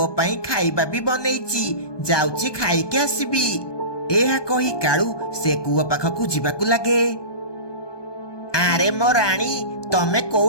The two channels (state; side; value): late; right; 1.2 ms